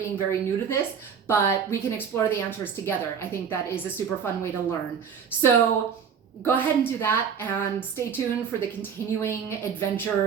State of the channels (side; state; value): left; quieter; 7.2 dB